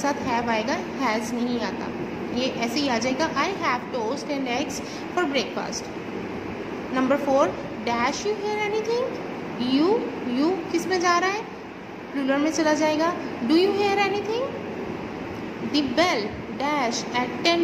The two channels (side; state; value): both; identical; correlation 1.00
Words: हैव आएगा, हैज़ नहीं आता, ये ऐसे ही आ जाएगा। I have toast and eggs for breakfast. Number 4, dash you hear anything. You किस में जा रहा है, प्लूरल में चला जाएगा। Do you hear anything. The bell dash at